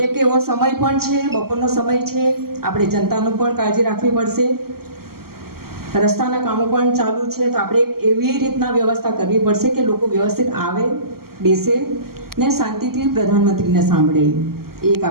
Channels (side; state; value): left; late; 0.93 ms